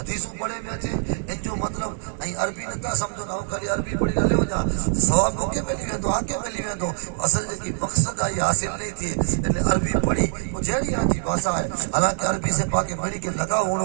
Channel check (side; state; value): left; silent; 63 dB below the other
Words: पढ़े में अचे इन जो मतलब ऐं अरबी नथा समझो ना खाली अरबी पढ़ी हलियो था सवाब मोके मिली वेंदो आगे मिली वेंदो असल जेकी मकसद आहे हासिल नहीं थी इन अरबी पढ़ी वो जहिड़ी आहे भाषा है हालांकि अरबी से पाके पढ़ी के लगाव